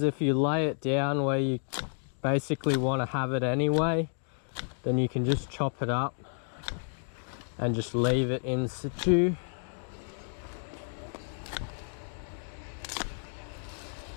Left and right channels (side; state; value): right; silent; 57 dB below the other